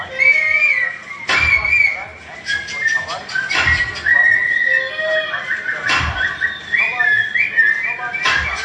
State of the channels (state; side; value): identical; both; correlation 1.00